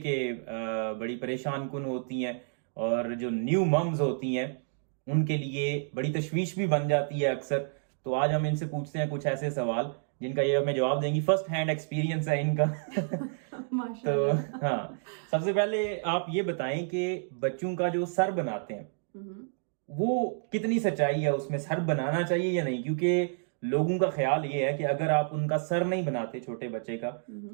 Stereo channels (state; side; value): silent; left; digital silence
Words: کے بڑی پریشان کن ہوتی ہیں، اور جو نیو ممز ہوتی ہیں ان کے لیے بڑی تشویش بھی بن جاتی ہے اکثر. تو آج ہم ان سے پوچھتے ہیں کچھ ایسے سوال جن کا یہ ہمیں جواب دیں گی. فرسٹ ہینڈ ایکسپیرینس ہے ان کا. تو ہاں، سب سے پہلے آپ یہ بتائیں کہ بچوں کا جو سر بناتے ہیں وہ کتنی سچائی ہے اس میں؟ سر بنانا چاہیے یا نہیں؟ کیونکہ لوگوں کا خیال یہ ہے کہ اگر آپ ان کا سر نہیں بناتے چھوٹے بچے کا